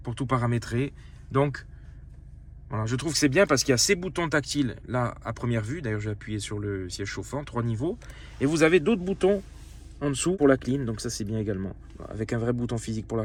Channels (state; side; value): identical; both; correlation 1.00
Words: pour tout paramétrer. Donc, voilà, je trouve que c'est bien parce qu'il y a ces boutons tactiles là à première vue. D'ailleurs, j'ai appuyé sur le siège chauffant, 3 niveaux. Et vous avez d'autres boutons en dessous pour la clim, donc ça c'est bien également. Avec un vrai bouton physique pour la